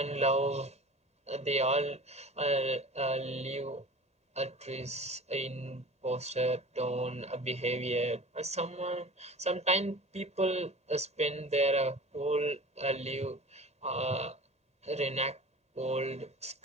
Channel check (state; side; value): normal; both; correlation 0.39